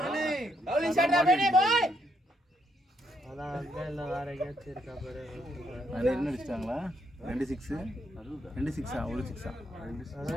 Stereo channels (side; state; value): both; normal; correlation 0.75